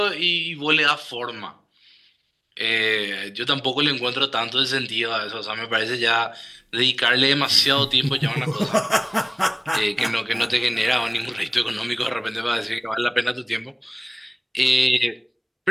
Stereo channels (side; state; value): both; identical; correlation 1.00